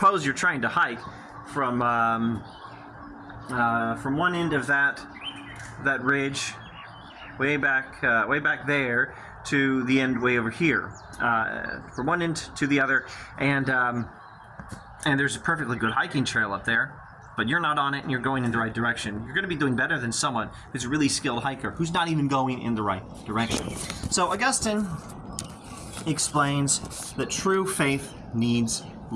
you're trying to hike from one end of that ridge way back there to the end way over here, from one end to the other, and there's a perfectly good hiking trail up there, but you're not on it and you're going in the right direction. You're going to be doing better than someone who's a really skilled hiker who's not even going in the right direction. So Augustine explains that true faith needs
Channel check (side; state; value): both; identical; correlation 1.00